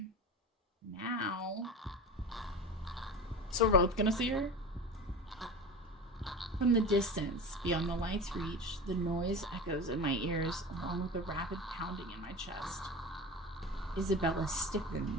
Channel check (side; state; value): both; normal; correlation 0.30